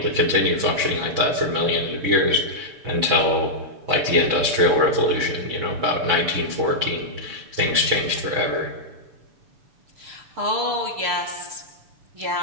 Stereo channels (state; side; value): late; left; 6.9 ms